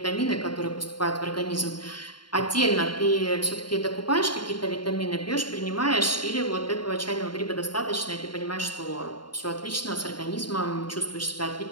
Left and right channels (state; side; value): late; right; 0.72 ms